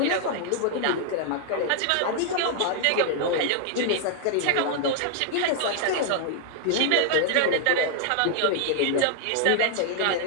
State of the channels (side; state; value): both; different; correlation 0.00